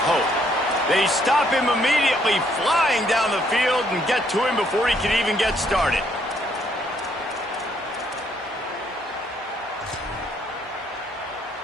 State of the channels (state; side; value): normal; both; correlation 0.70